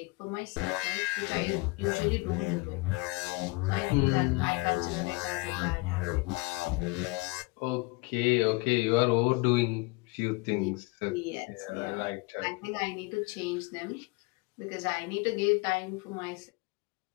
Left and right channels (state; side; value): quieter; right; 26.1 dB